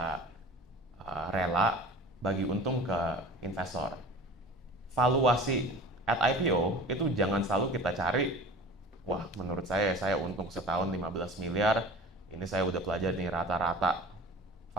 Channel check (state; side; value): normal; both; correlation 0.39